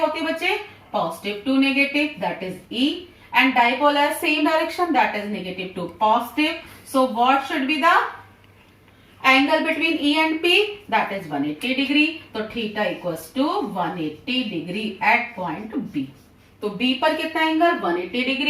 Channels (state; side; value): identical; both; correlation 1.00